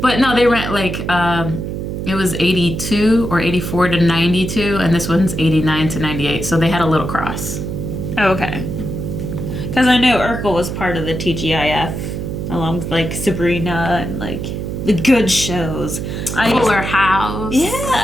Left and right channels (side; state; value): right; noise; hum, 5 dB below the sound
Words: But no, they ran like it was 82 or 84 to 92, and this one's 89 to 98. So they had a little cross. Oh, okay. Because I know Urkel was part of the TGIF, along with like Sabrina and like the good shows. Fuller House. Yeah,